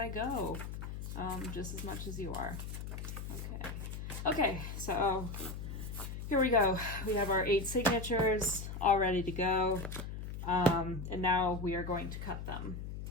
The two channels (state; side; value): noise; left; hum, 7 dB below the sound